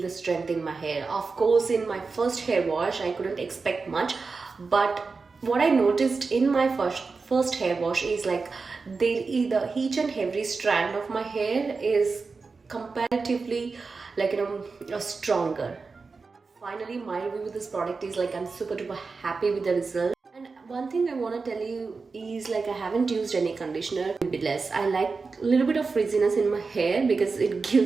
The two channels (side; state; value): left; quieter; 4.4 dB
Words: the strength in my hair. Of course, in my first hair wash, I couldn't expect much, but what I noticed in my first hair wash is like each and every strand of my hair is comparatively stronger. Finally, my review with this product is like I'm super duper happy with the result. And one thing I want to tell you is like I haven't used any conditioner. A bit less. I like a little bit of frizziness in my hair because it